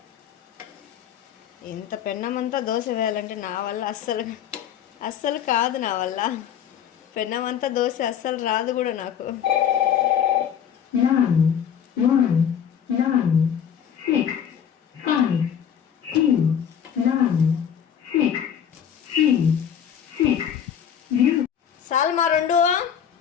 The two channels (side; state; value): right; quieter; 8.7 dB